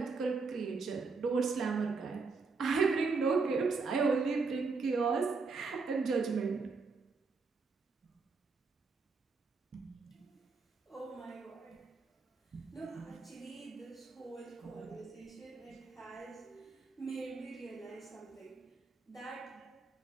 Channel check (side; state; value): left; quieter; 4.5 dB